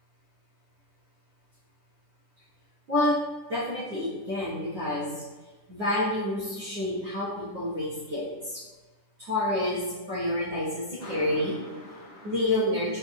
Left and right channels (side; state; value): left; late; 10 ms